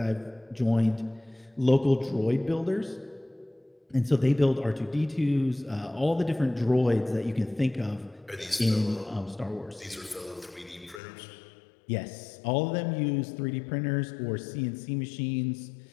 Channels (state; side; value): drops out; right; at 11.0 s